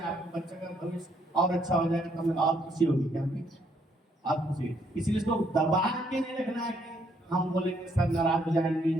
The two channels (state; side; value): normal; both; correlation 0.71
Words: बच्चे का भविष्य और अच्छा हो जाएगा तो हमें और खुशी होगी, क्या होगी और खुशी। इसलिए इसको दबा के नहीं रखना है कि हम बोलेंगे सर नाराज हो जाएंगे,